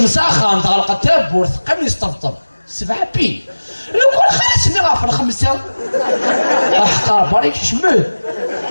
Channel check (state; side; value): inverted; both; correlation -1.00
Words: متعلقه تبور قبل يستفطف 7 بي لو كون خلاص ني غافر 5 احقر باريك شمل